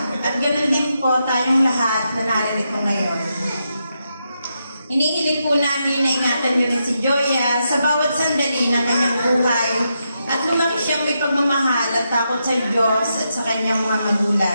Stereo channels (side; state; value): both; inverted; correlation -0.84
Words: At ganoon din po tayong lahat na naririto ngayon. Inihiling po namin na ingatan niyo rin si Joya sa bawat sandali ng kanyang buhay at lumaki siyang may pagmamahal at takot sa Diyos at sa kanyang mga